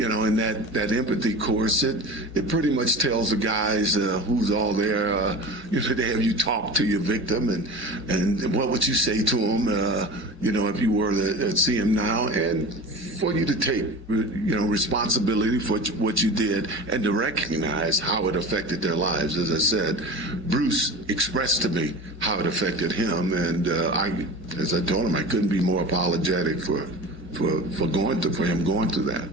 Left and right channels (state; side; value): normal; both; correlation 0.33